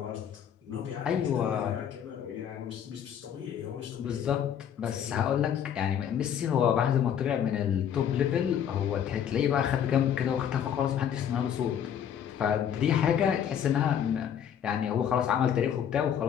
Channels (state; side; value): quieter; right; 8.9 dB